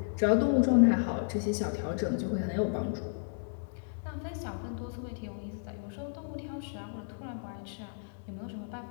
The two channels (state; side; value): silent; right; digital silence